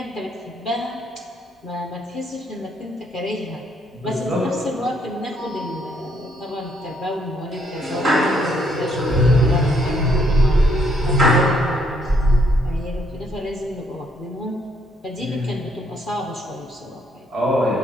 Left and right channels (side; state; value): both; normal; correlation 0.70